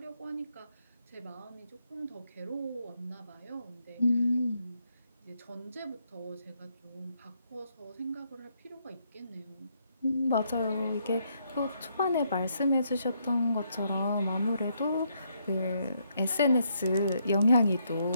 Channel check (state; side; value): inverted; both; correlation -0.75